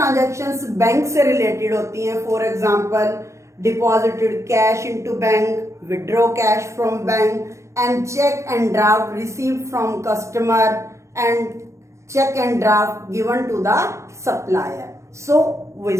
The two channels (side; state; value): left; late; 0.14 ms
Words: bank से related होती हैं, for example deposited cash into bank, withdraw cash from bank, and cheque and draft received from customer, and cheque and draft given to the supplier. So we